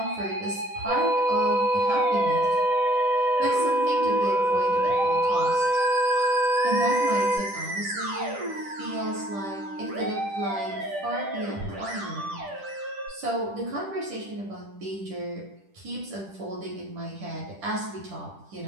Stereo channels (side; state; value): left; late; 10 ms